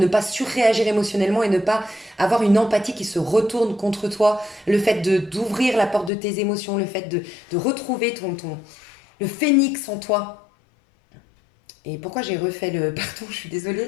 pas surréagir émotionnellement et ne pas avoir une empathie qui se retourne contre toi, le fait d'ouvrir la porte de tes émotions, le fait de retrouver le phénix en toi. Et pourquoi j'ai refait le... Pardon, je suis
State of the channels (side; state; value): right; drops out; at 6.1 s